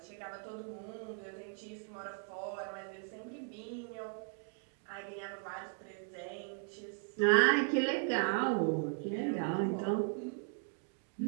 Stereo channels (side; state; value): left; silent; 53 dB below the other